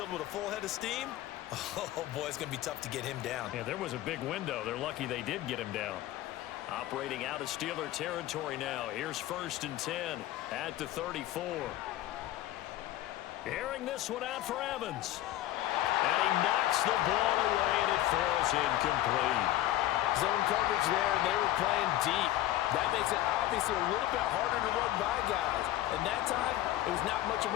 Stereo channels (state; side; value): quieter; right; 14.4 dB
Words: with a full head of steam, oh boy, it's going to be tough to get him down. Yeah, there was a big window. They're lucky they did get him down. Operating out of Steeler territory now. Here's 1st and 10 at the 34. Airing this one out for Evans. And he knocks the ball away, and it falls incomplete. Zone coverage there, and they were playing deep. That makes it obviously a little bit harder to run by guys. And that time, it was not much of